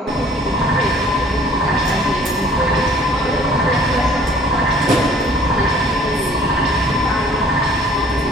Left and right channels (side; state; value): both; normal; correlation 0.55